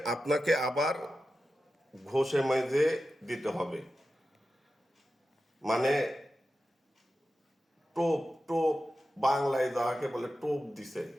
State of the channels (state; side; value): normal; both; correlation 0.92